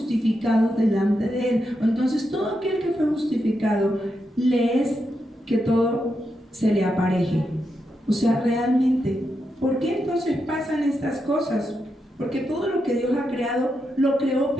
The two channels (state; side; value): normal; both; correlation 0.85